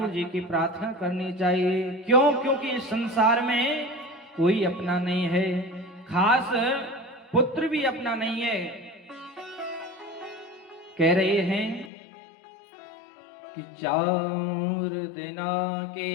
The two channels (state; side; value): drops out; right; at 11.9 s